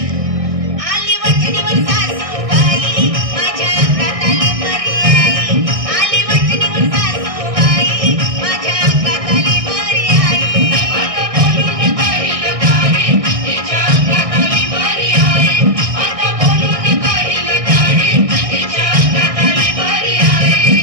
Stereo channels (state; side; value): late; left; 1.6 ms